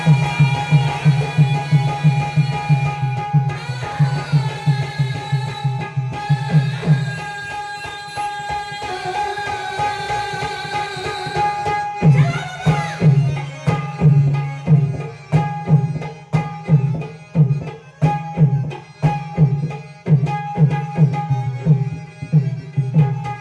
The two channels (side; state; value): both; identical; correlation 1.00